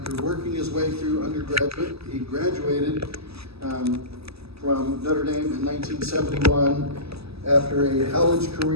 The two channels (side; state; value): left; late; 0.78 ms